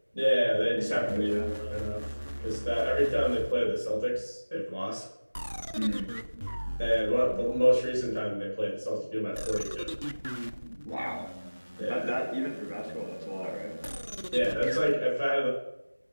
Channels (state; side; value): inverted; both; correlation -1.00